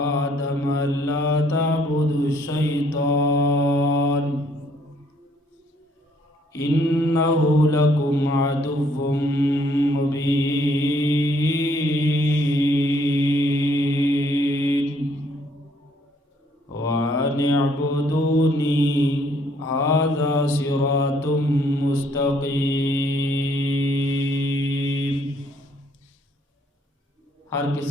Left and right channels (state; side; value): normal; both; correlation 0.65